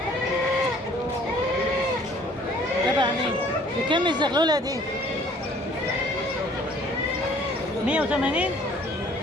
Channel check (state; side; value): normal; both; correlation 0.56